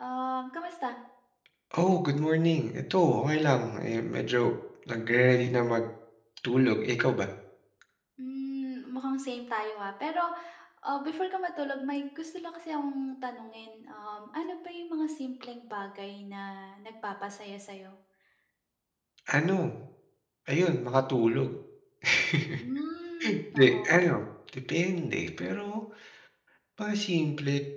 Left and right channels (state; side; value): identical; both; correlation 1.00